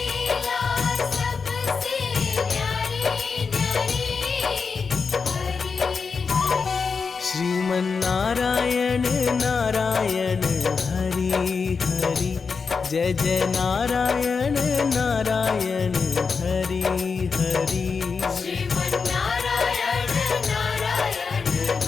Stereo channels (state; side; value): quieter; right; 5.2 dB